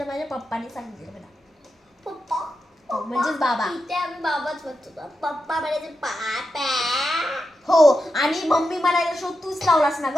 माझ्या पप्पाने सांगितलं मला, पप्पा म्हणजेच बाबा, इथे आम्ही बाबाच म्हणतो, पप्पा म्हणायचे पापा. हो, आणि मम्मी म्हणायला शो तूच लावलास ना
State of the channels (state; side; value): normal; both; correlation 0.88